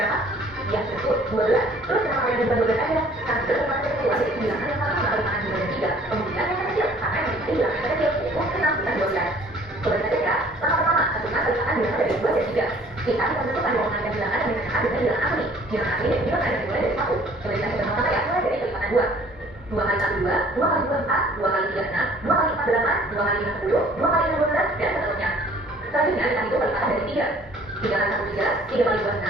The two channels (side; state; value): both; normal; correlation 0.54